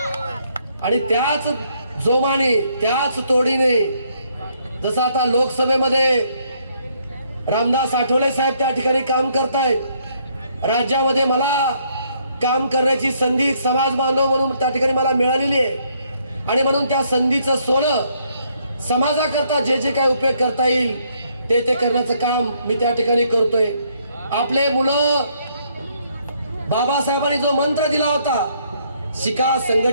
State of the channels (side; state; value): both; inverted; correlation -0.70